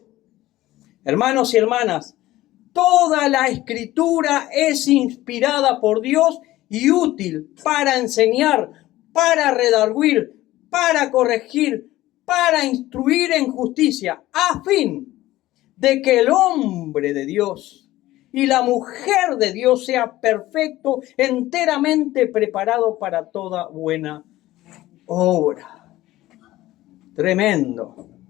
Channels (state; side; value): quieter; right; 16.3 dB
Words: Hermanos y hermanas, toda la Escritura es inspirada por Dios y útil para enseñar, para redarguir, para corregir, para instruir en justicia, a fin de que el hombre de Dios y la mujer de Dios sea perfecto, enteramente preparado para toda buena obra. Tremendo,